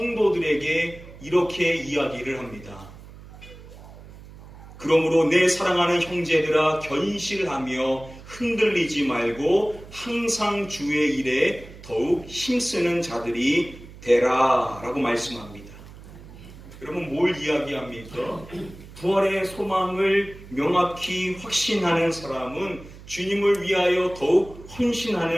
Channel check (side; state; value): right; noise; hum, 18 dB below the sound